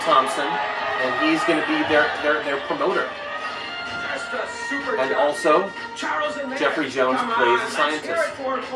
Thompson, and he's going to be their promoter. And also, Jeffrey Jones plays a scientist.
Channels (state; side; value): identical; both; correlation 1.00